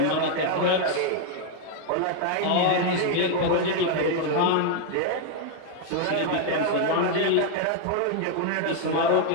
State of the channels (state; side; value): different; both; correlation 0.00